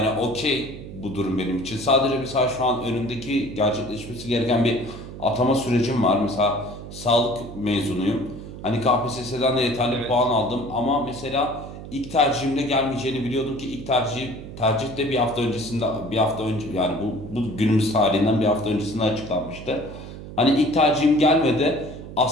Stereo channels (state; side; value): noise; right; hum, 12 dB below the sound